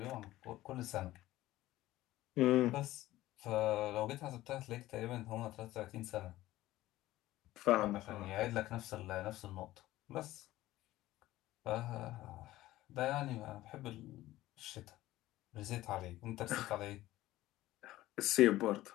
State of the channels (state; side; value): quieter; right; 16.1 dB